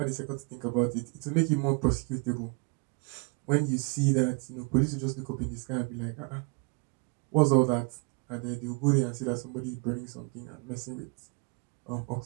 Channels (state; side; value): quieter; left; 33.2 dB